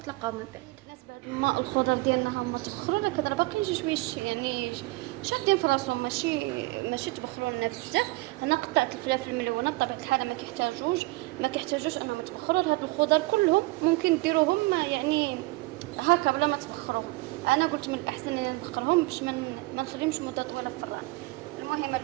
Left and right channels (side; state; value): left; quieter; 22.2 dB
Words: من بعد. الناس بعد ما الخضر ديالنا هما تبخروا، راه كدر باقيين شي يعني شادين في راسهم، ماشي تبخروا لنا بزاف. انا قطعت الفلافل الملونه بطبيعه الحال ما كيحتاجوش انهم يتبخروا. هاد الخضر كلهم ممكن ديروهم يعني هكا بلا ما تبخروهم. انا قلت من الاحسن ان نبخرهم باش ما نخليهمش مده طويله في الفران. المهم